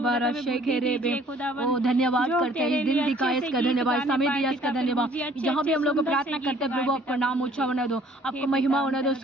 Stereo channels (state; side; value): normal; both; correlation 0.57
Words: रशेखेरे बे, ओ धन्यवाद करते हैं इस दिन दिखाए इसका धन्यवाद, समय दिया इसका धन्यवाद, जहाँ भी हम लोग प्रार्थना करते हैं प्रभु आपका नाम ऊंचा होने दो, आपको महिमा होने दो,